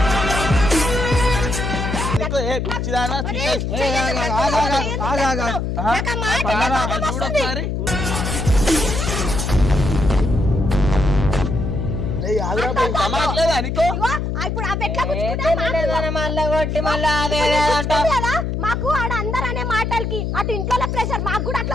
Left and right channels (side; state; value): left; noise; hum, 2 dB below the sound